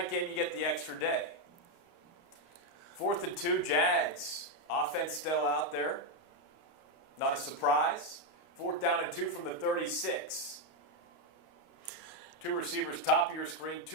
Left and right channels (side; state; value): right; late; 29 ms